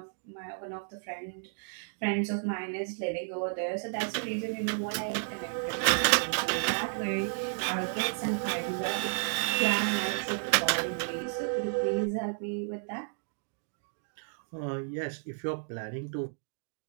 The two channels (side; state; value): left; silent; digital silence